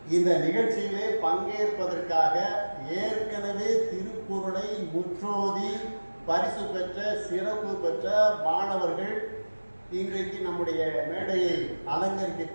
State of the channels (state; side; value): inverted; both; correlation -1.00